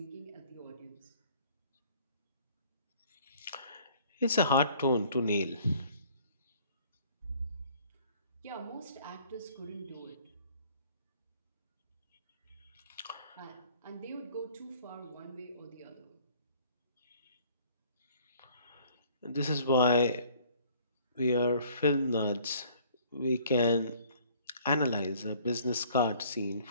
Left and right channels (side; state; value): both; inverted; correlation -0.56